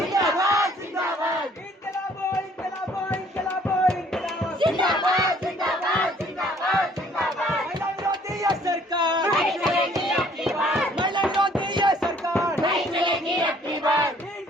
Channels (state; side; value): normal; both; correlation 0.59